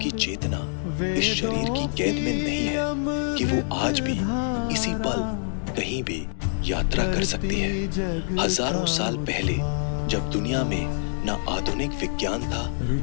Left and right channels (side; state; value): right; silent; digital silence